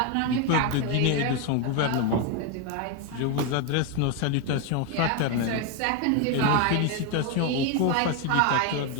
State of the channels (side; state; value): both; different; correlation 0.01